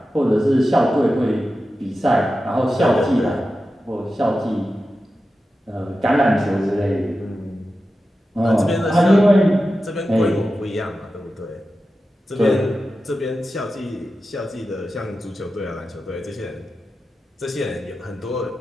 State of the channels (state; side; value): normal; both; correlation 0.92